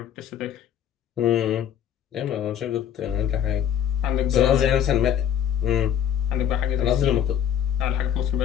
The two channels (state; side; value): quieter; right; 9.6 dB